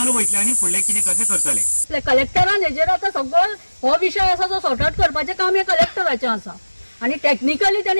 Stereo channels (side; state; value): both; inverted; correlation -1.00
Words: वयतले आनी फुडलें कितें कशें करतले. कलेक्टरान हेजेर आतां सगळो हो विशय आसा तो सॉर्ट आउट करपाचें काम हे कलेक्टराचें आसा आनी टेक्निकली